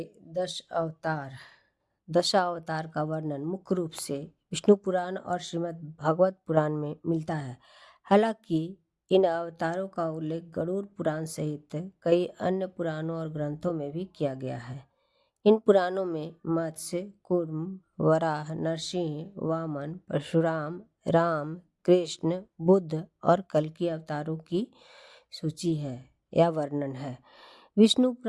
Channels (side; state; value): both; identical; correlation 1.00